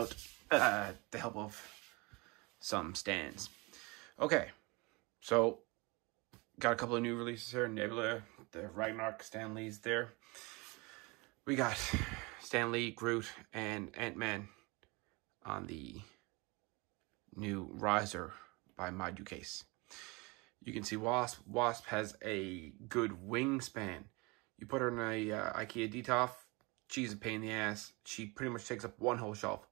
the help of some stands. Okay, so got a couple of new releases here. Nebula, the Ragnarok, Stan Lee's there. We got Stan Lee, Groot, and Ant-Man on the new Riser by Module Case. You can see Wasp. Wasp has a good wingspan. You put her in a IKEA Detolf, she's a pain in the ass. She pretty much takes up one whole shelf,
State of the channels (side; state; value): left; quieter; 26.6 dB